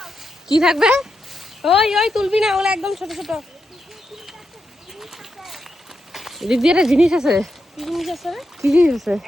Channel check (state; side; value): normal; both; correlation 0.85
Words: কি থাকবে? ওই তুলবি না, ওগুলো একদম ছোট ছোট। এদিক দিয়ে একটা জিনিস আছে। কি জিনিস আছে রে? কি জিনিস আছে?